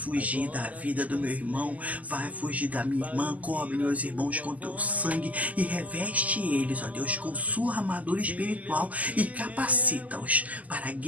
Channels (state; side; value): late; left; 0.075 ms